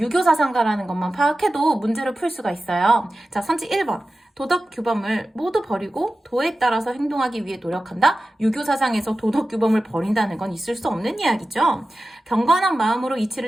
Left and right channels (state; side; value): normal; both; correlation 0.94